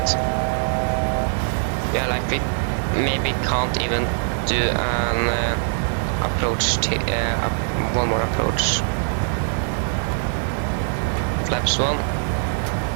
Yeah, like we maybe can't even do an approach, one more approach. Flaps 1.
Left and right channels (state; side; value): silent; left; digital silence